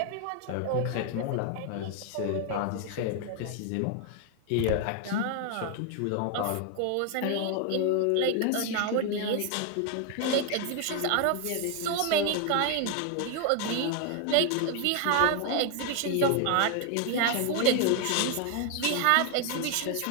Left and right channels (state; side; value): different; both; correlation 0.00